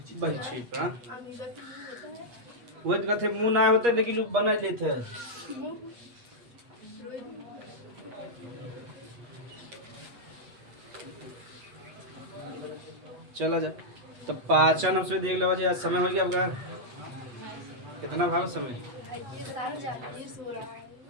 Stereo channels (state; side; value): late; left; 8.3 ms